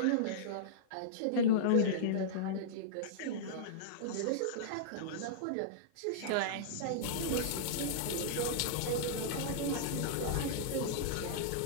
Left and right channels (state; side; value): different; both; correlation -0.03